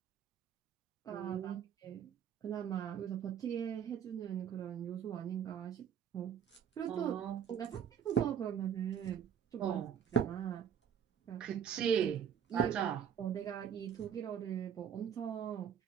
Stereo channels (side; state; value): left; quieter; 8.5 dB